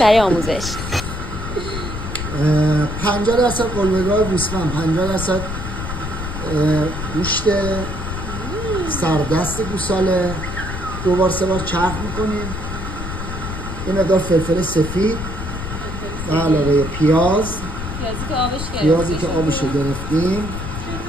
آموزش. 50% قلمه‌گاه گوسفند، 50% گوشت سردست گوساله، 2 بار 3 بار چرخ میکنیم. یه مقدار فلفل سفید و علاوه پیازی که آبش گرفتیم،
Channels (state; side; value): noise; left; rumble, 6 dB below the sound